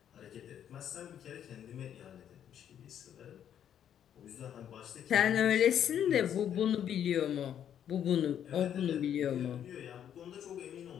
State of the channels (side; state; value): right; quieter; 9.6 dB